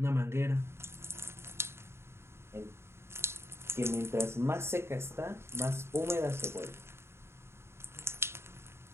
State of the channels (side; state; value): left; late; 0.12 ms